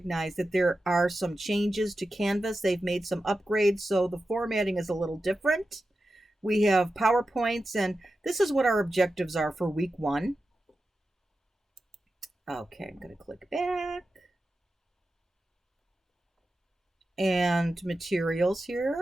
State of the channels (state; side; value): normal; both; correlation 0.92